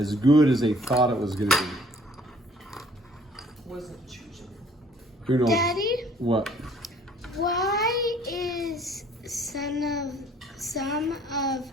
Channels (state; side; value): normal; both; correlation 0.57